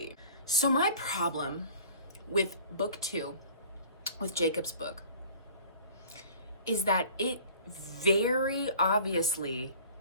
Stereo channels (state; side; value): inverted; both; correlation -0.47